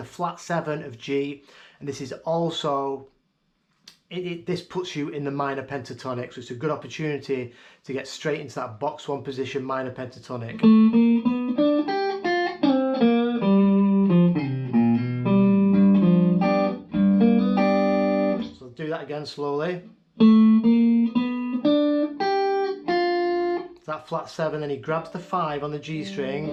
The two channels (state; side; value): identical; both; correlation 1.00